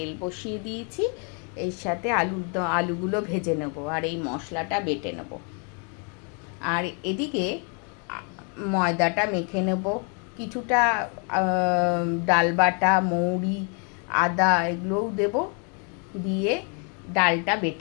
বসিয়ে দিয়েছি, এর সাথে আলুগুলো ভেজে নেব আর এই মশলাটা বেটে নেব। আর এদিকে ময়দাটা মেখে নেব, কিছুটা ডাল বাটা মৌরি আদা এগুলোও দেব, দিয়ে ডালটা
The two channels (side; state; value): right; quieter; 37.2 dB